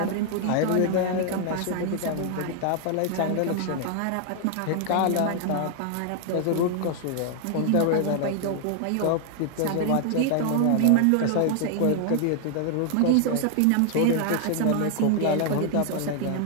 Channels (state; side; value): different; both; correlation 0.00